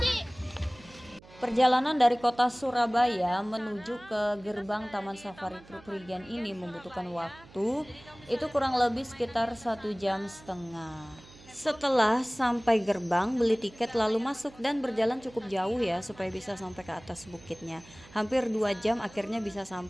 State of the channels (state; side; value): noise; right; hum, 23 dB below the sound